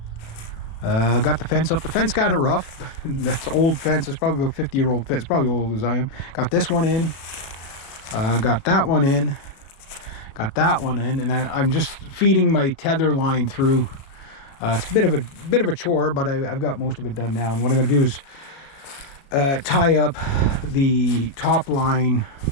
Got the fence up. The fence kind of rough. That's old fence. It's probably a 50-year-old fence. Probably old as I am. Got this one in. Got that one in. Got that one in. And I'm just feeding my tether line through. It's a bit of a chore, but I've got most of it done now. And what I'm going to do is tie up the top line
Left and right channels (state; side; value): late; right; 36 ms